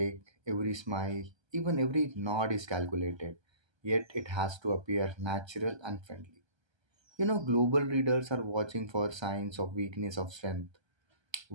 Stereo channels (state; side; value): late; left; 1.3 ms